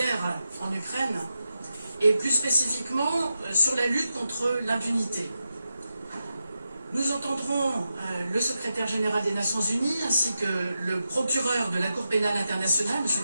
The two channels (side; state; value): both; inverted; correlation -0.88